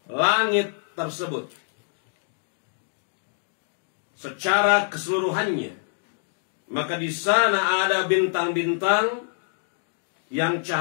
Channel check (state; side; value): silent; right; digital silence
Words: langit tersebut secara keseluruhannya, maka di sana ada bintang-bintang yang